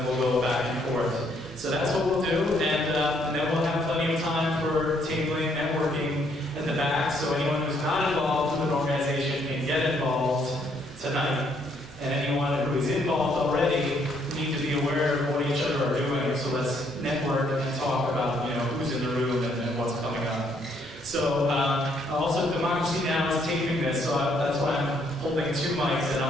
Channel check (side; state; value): both; normal; correlation 0.69